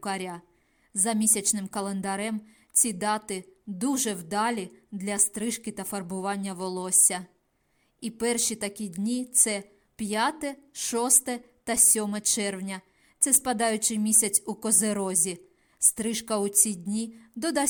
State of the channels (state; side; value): identical; both; correlation 1.00